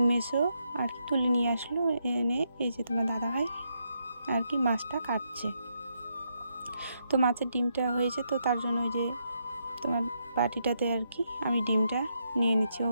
মেসো আর কি তুলে নিয়ে আসলো, এনে এই যে তোমার দাদাভাই আর কি মাছটা কাটছে। তো মাছের ডিমটা হয়েছে, তো তার জন্য ওই যে তোমার বাটিটাতে আর কি আমি ডিমটা নিয়ে নিচ্ছি। ও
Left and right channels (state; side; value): inverted; both; correlation -0.80